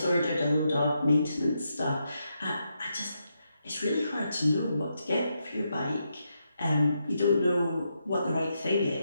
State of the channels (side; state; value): both; inverted; correlation -0.83